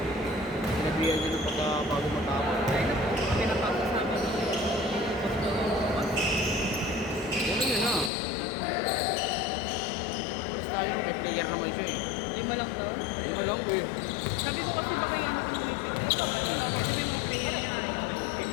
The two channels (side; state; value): right; drops out; at 8.1 s